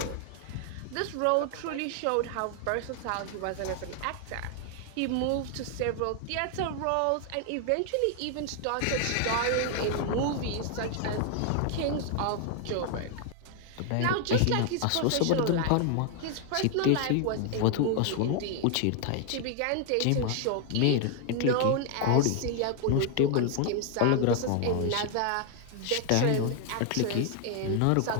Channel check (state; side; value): different; both; correlation 0.00